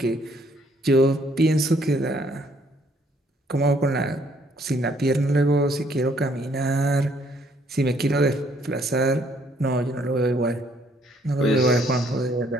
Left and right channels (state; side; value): normal; both; correlation 0.66